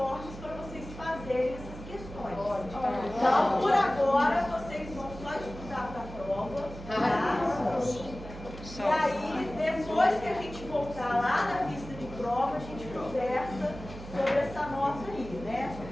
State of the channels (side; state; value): right; noise; hum, 13 dB below the sound